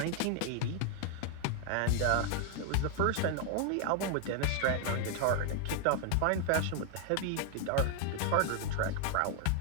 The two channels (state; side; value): different; both; correlation 0.00